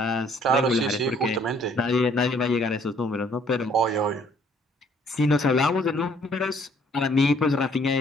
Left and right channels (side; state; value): both; normal; correlation 0.62